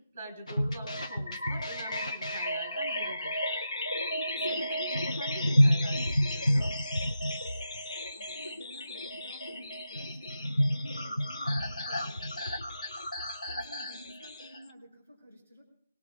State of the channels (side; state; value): both; inverted; correlation -0.87